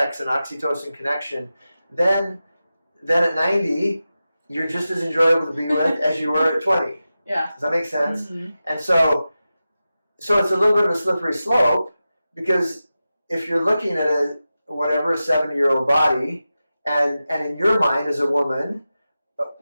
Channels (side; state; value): both; inverted; correlation -0.93